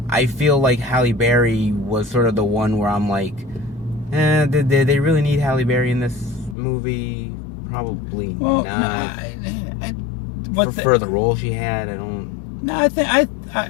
I feel like Halle Berry was sort of the one where I'm like, did they really need Halle Berry in this movie? Probably not. For the role she had, I don't. No,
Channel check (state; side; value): drops out; right; at 6.6 s